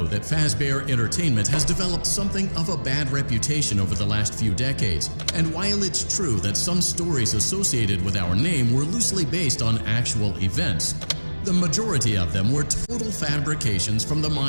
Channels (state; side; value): inverted; both; correlation -1.00